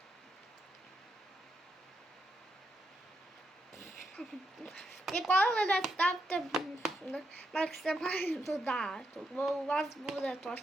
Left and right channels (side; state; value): both; normal; correlation 0.81